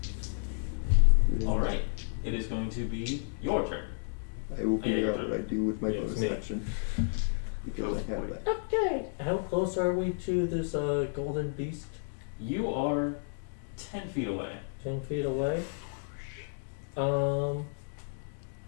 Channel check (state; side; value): silent; right; digital silence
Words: Alright. It is going to be your turn. I will figure your out turn. what I do with my Yeah, it's bonus me. action. Because Oh, I have boy. that. Okay. How close are we to this golden beast? You are 10 feet away. 10 feet away. How